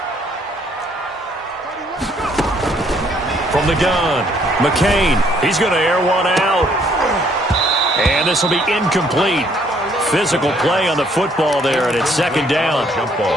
From the gun, McCain. He's going to air one out. And this will be incomplete. Physical play on the football there, and it's 2nd down.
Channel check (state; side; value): normal; both; correlation 0.65